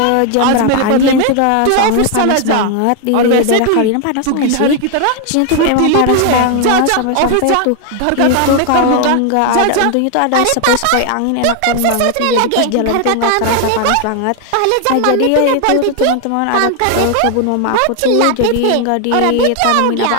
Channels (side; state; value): both; different; correlation 0.00